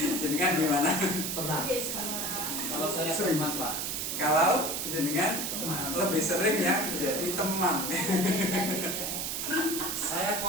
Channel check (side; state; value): right; noise; hiss, 2 dB below the sound